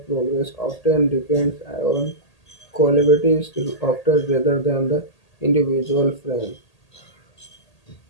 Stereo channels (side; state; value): right; late; 1.8 ms